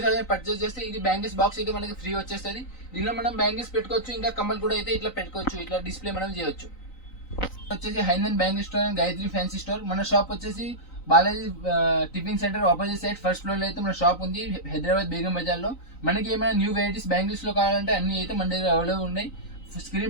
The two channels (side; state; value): right; late; 3.9 ms